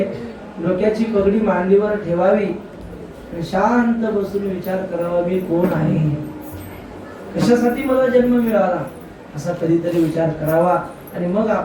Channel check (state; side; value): identical; both; correlation 1.00